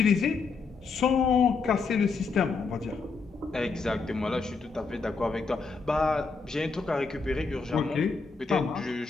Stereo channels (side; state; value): right; quieter; 4.6 dB